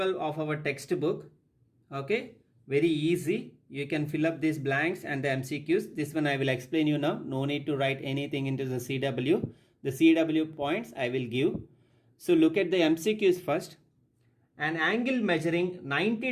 of our textbook. Okay, very easy. You can fill up these blanks and the MCQs. This one I will explain you now. No need to write anything into the CW. The CW points I will give. So look at the MCQs first. An angle measuring 90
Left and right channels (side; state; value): both; identical; correlation 1.00